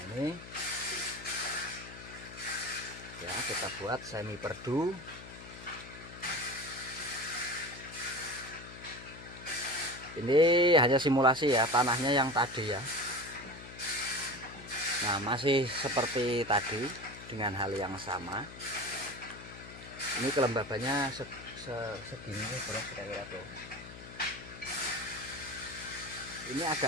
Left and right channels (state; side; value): noise; left; hum, 15 dB below the sound